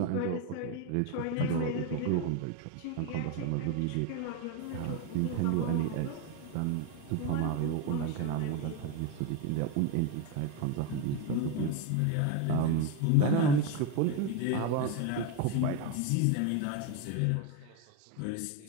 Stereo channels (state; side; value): different; both; correlation 0.02